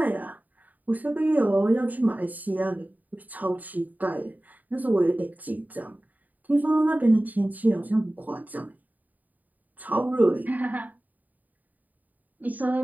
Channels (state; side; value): late; left; 0.081 ms